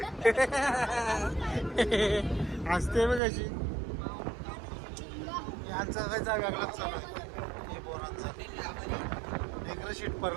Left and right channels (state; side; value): drops out; left; at 3.2 s